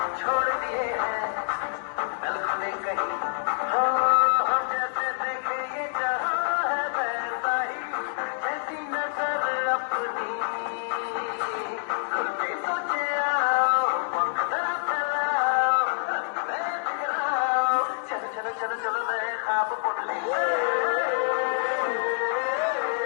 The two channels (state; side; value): silent; right; digital silence